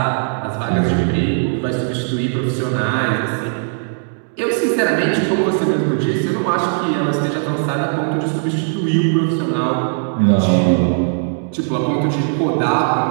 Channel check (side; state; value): left; silent; digital silence